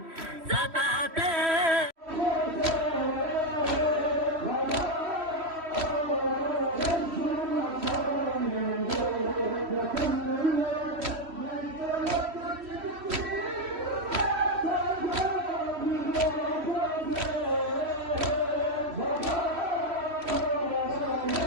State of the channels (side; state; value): left; late; 3.1 ms